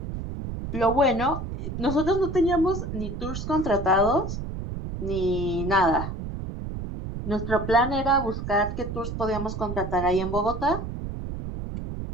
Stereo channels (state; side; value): noise; right; rumble, 6 dB below the sound